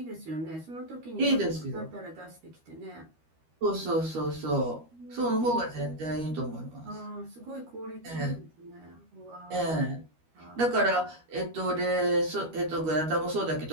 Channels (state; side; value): late; left; 13 ms